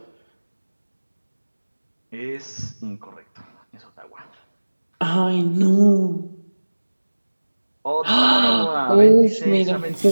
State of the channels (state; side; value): inverted; both; correlation -1.00